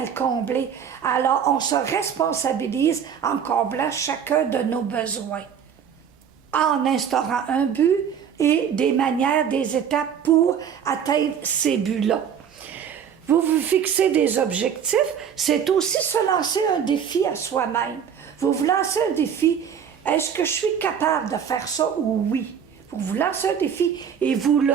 le combler. Alors, on se responsabilise en comblant chacun de nos besoins, en instaurant un but et des manières, des étapes pour atteindre ces buts-là. Vous vous fixez des objectifs, c'est aussi se lancer un défi à soi-même. Vous vous lancez un défi, est-ce que je suis capable de faire ça ou oui? Vous vous lancez un défi et vous le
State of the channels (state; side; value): quieter; left; 7.9 dB